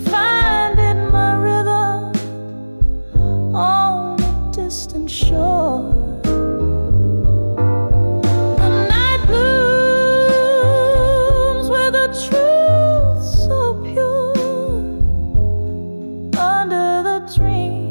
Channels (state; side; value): inverted; both; correlation -1.00